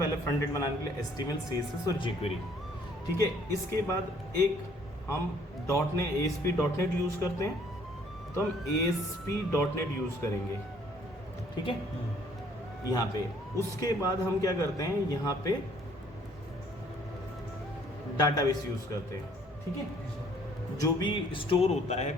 फ्रंट एंड बनाने के लिए HTML, CSS और jQuery, ठीक है। इसके बाद एक हम ASP.NET यूज़ करते हैं, तो हम ASP.NET यूज़ करेंगे, ठीक है, यहाँ पे। उसके बाद हम क्या करते हैं, यहाँ पे डाटाबेस यूज़ करते हैं, ठीक है। जो भी स्टोर होता है,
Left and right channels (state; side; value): normal; both; correlation 0.60